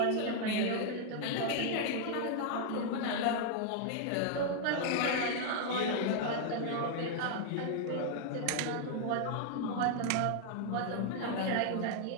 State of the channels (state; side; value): different; both; correlation 0.00